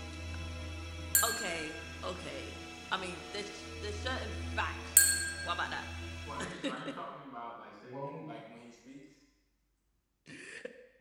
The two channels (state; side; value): identical; both; correlation 1.00